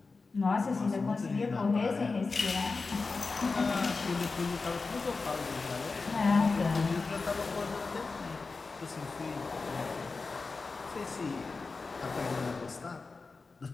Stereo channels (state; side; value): quieter; right; 4.1 dB